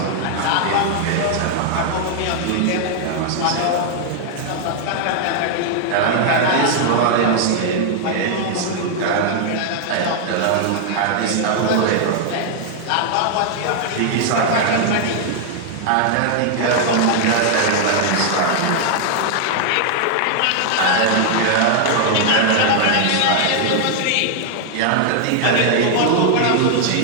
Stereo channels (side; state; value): both; different; correlation 0.00